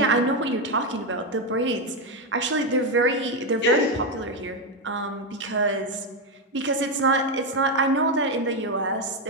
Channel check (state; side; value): normal; both; correlation 0.07